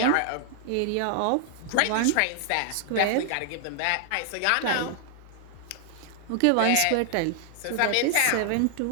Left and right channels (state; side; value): different; both; correlation 0.00